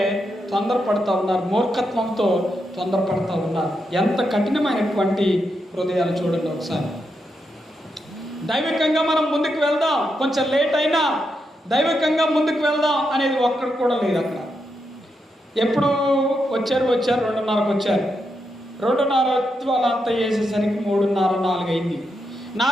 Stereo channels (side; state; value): both; normal; correlation 0.83